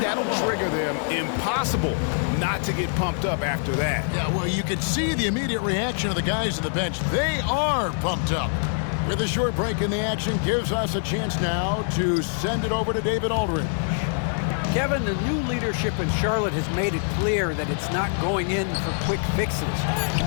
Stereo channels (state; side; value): silent; right; 62 dB below the other